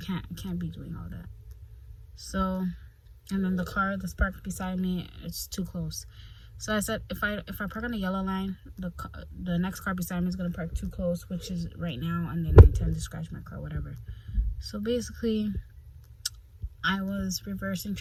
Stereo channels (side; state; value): both; identical; correlation 1.00